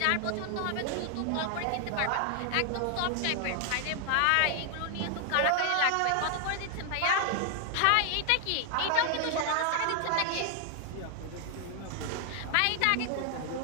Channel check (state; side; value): different; both; correlation 0.00